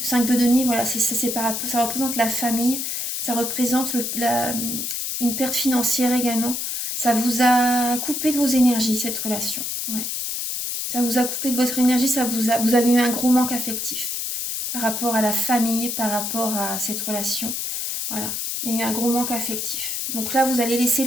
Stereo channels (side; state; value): left; noise; hiss, 3 dB below the sound